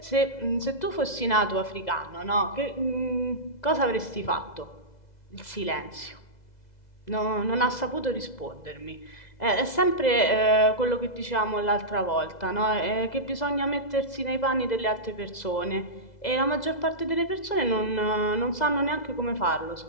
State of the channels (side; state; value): right; late; 2.0 ms